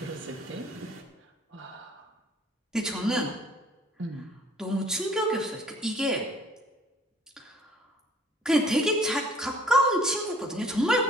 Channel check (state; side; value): normal; both; correlation 0.56